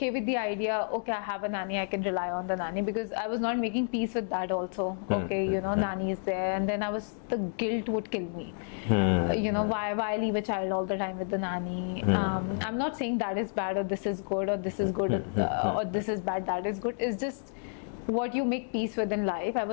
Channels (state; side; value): silent; right; digital silence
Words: with the idea, okay, I have a nanny, I can rely on the nanny, because I was not making peace with that also. Okay, nanny is there, and then the guilt would kill me. Why leave a child all the time with the nanny? I'm not saying that is bad or this is good or this is good or this is bad, that is good. It's just what you make peace with in life. I